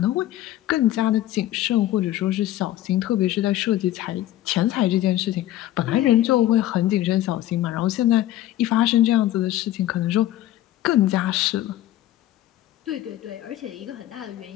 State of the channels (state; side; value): quieter; right; 13.9 dB